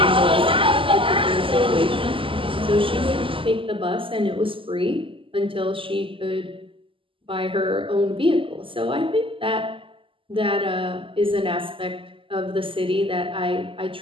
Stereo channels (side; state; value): left; late; 0.25 ms